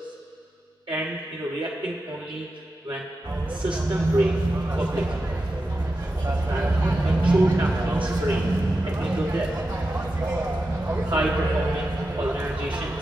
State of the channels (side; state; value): both; normal; correlation 0.90